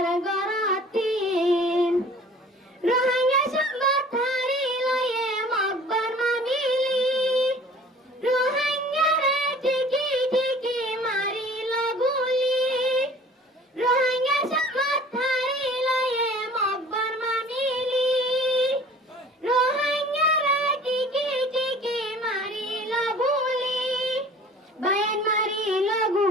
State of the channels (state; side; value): normal; both; correlation 0.48